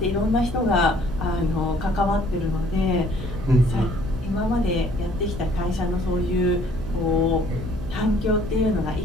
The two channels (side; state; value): left; noise; hum, 11 dB below the sound